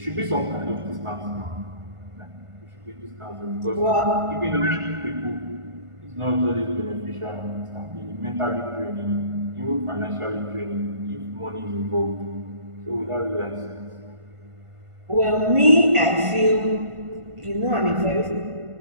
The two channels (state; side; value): late; left; 1.5 ms